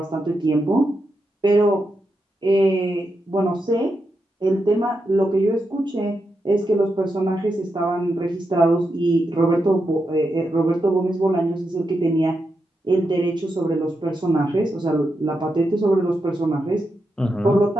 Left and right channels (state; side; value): normal; both; correlation 0.86